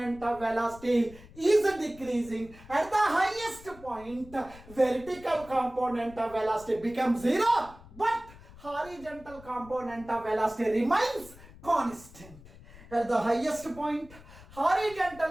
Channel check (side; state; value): left; noise; rumble, 20 dB below the sound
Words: of velocity is decreasing. At the highest point, vertical component of velocity becomes 0, but horizontal component of velocity remains constant. At the highest point,